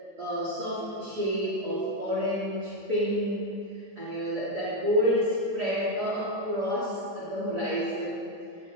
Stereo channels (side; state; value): both; normal; correlation 0.04